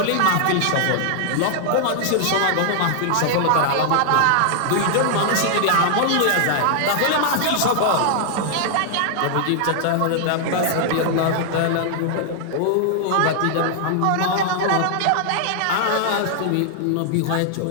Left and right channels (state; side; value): different; both; correlation -0.01